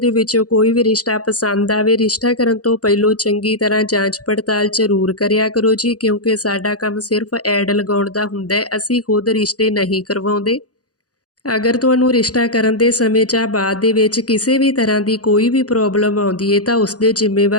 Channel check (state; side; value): late; right; 0.67 ms